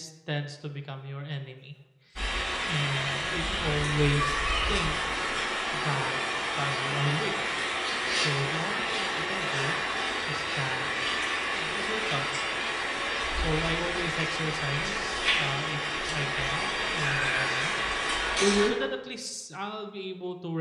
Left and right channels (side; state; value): both; identical; correlation 1.00